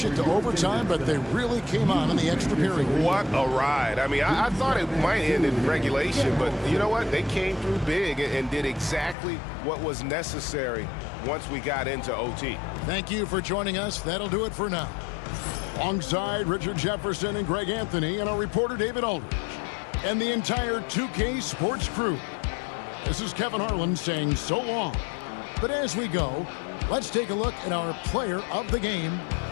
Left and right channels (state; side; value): drops out; right; at 9.2 s